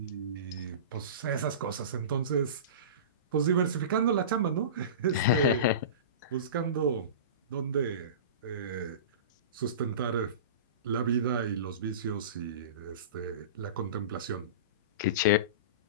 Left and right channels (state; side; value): inverted; both; correlation -0.31